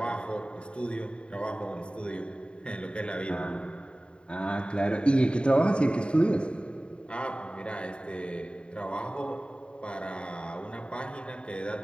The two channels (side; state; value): right; late; 0.053 ms